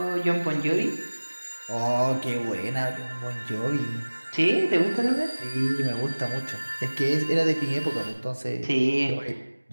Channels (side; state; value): both; inverted; correlation -1.00